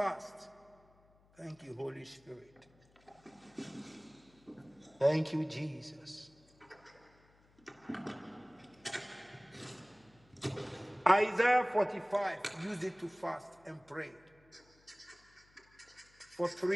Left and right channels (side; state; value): left; noise; hum, 30 dB below the sound